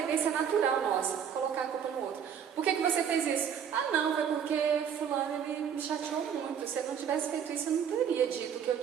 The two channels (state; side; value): quieter; left; 8.0 dB